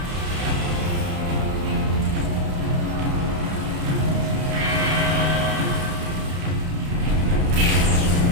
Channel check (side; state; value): left; late; 31 ms